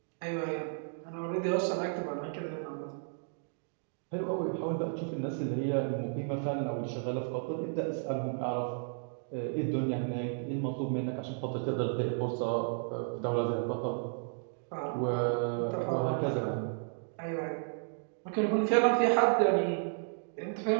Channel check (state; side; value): silent; left; digital silence